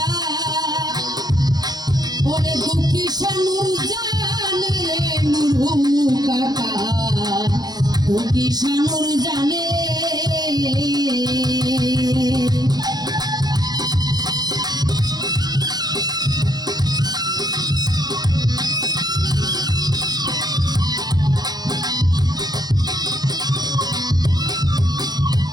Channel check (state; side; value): late; left; 0.19 ms